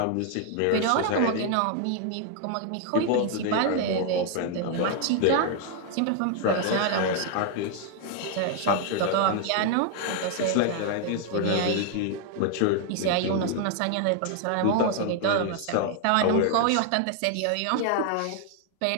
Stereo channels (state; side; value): different; both; correlation 0.00